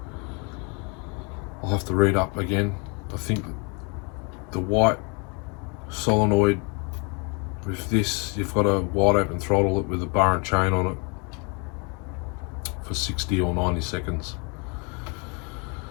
I'll have to read up again. I think the white solenoid with this, you've got to wide open throttle it with a bar and chain on it for 60 or 90 seconds.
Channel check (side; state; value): right; quieter; 34.0 dB